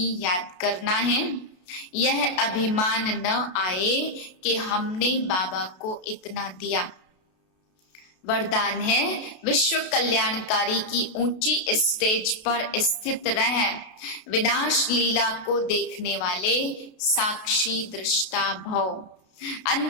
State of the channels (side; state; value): right; late; 33 ms